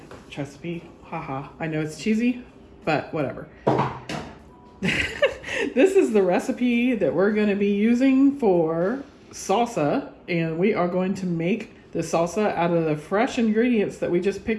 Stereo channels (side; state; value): both; identical; correlation 1.00